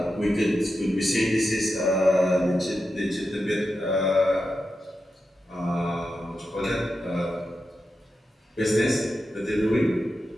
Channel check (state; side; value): normal; both; correlation 0.89